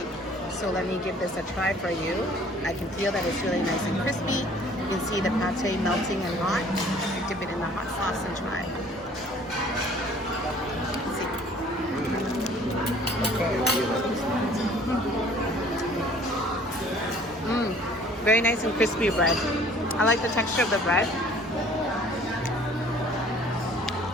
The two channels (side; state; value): both; normal; correlation 0.53